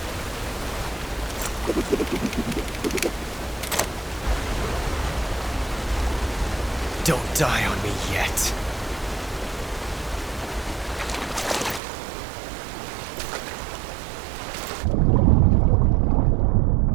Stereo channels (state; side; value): drops out; left; at 11.8 s